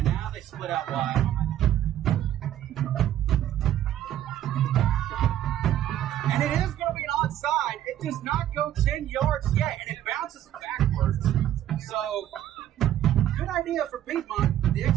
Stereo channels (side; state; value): left; quieter; 11.9 dB